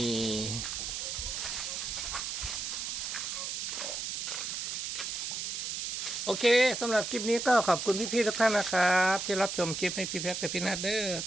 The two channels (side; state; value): right; noise; hiss, 3 dB below the sound